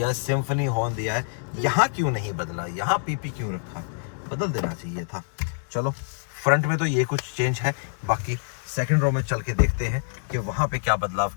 है, सिम्फनी हॉर्न दिया है, यहाँ क्यों नहीं बदला, यहाँ PP क्यों रखा है, बदल देना चाहिए था। चलो फ्रंट में तो ये कुछ चेंज है, बाकी सेकंड रो में चल के देखते हैं कि वहाँ पे क्या बदलाव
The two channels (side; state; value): right; silent; digital silence